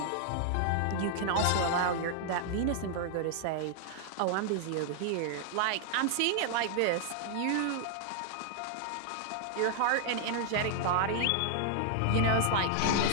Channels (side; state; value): both; different; correlation 0.00